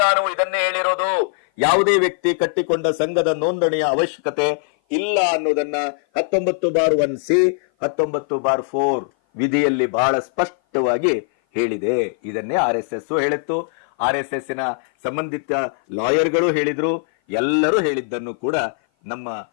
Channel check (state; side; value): silent; right; 56 dB below the other